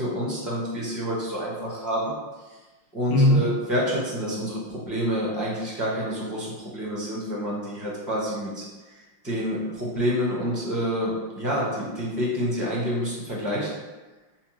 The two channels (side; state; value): right; late; 5.7 ms